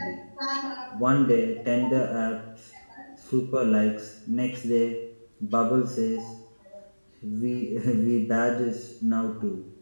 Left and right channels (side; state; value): both; inverted; correlation -1.00